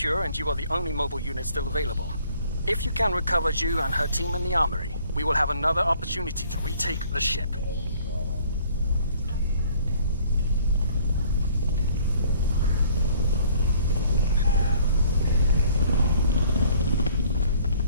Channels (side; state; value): both; inverted; correlation -0.58